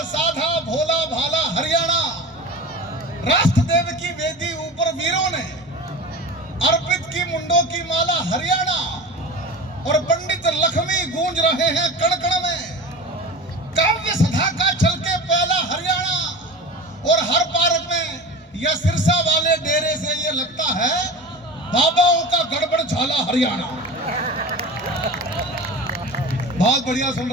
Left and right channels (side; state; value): both; normal; correlation 0.32